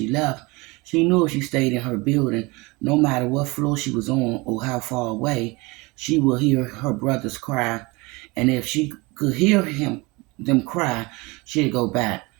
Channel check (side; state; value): left; quieter; 24.9 dB